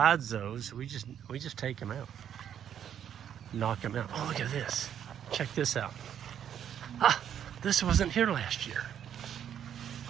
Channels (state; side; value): quieter; left; 9.4 dB